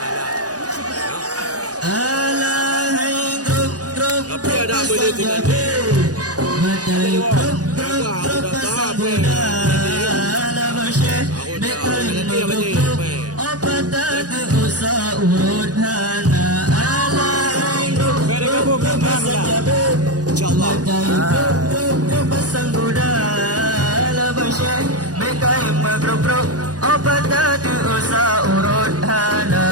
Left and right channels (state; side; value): late; left; 0.68 ms